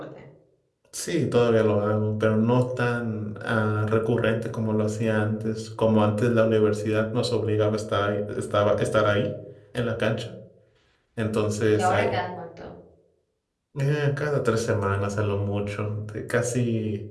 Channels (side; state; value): both; identical; correlation 1.00